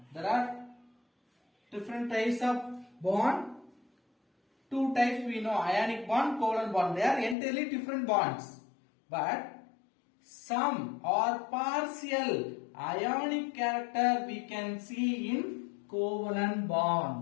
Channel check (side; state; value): right; drops out; at 7.4 s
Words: There are different types of bond. Two types we know, ionic bond, covalent bond. They are entirely different bonds. But some or partial ionic character we can see in covalent